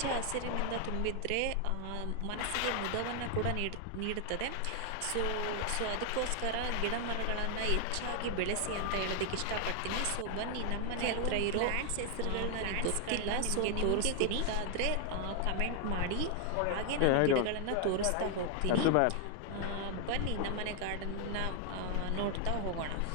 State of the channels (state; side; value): different; both; correlation 0.00